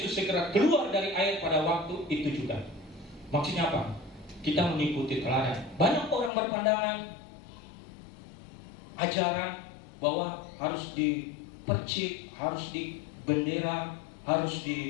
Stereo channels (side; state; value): right; drops out; at 6.3 s